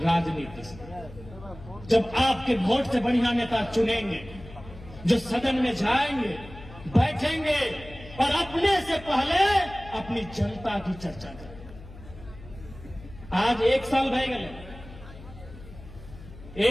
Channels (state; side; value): noise; left; hum, 17 dB below the sound